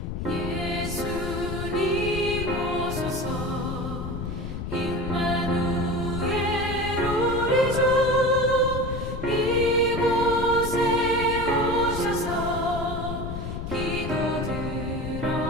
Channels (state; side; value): noise; left; rumble, 5 dB below the sound